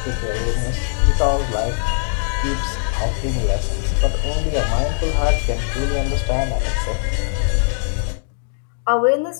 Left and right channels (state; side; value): silent; right; digital silence